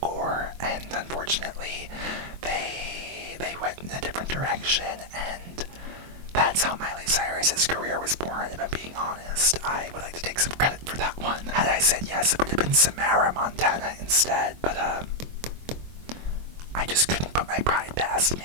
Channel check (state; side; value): late; left; 23 ms